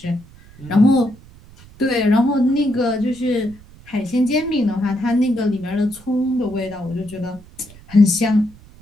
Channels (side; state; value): right; noise; rumble, 23 dB below the sound